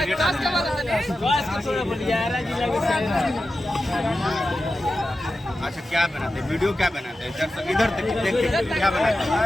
अच्छा क्या बनाते हैं वीडियो क्या बनाते हैं इधर देखते क्या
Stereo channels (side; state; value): both; normal; correlation 0.92